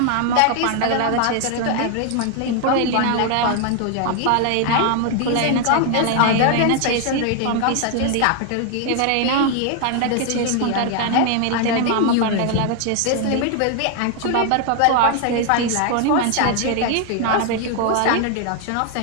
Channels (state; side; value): different; both; correlation 0.00